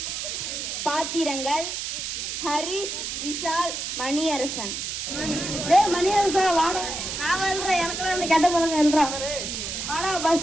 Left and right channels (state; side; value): noise; right; hiss, 4 dB below the sound